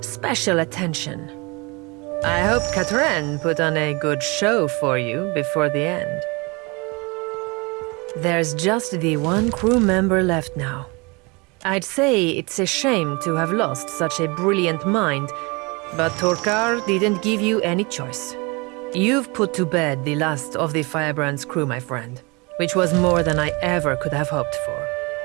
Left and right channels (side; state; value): left; quieter; 27.6 dB